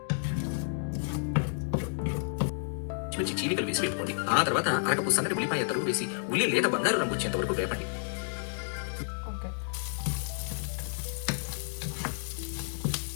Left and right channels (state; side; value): silent; right; digital silence